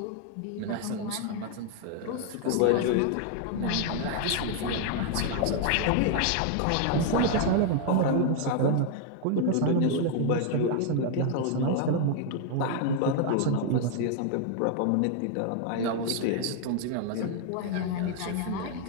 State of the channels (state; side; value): different; both; correlation 0.00